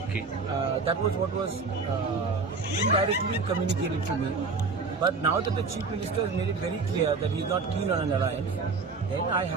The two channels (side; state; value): left; quieter; 4.3 dB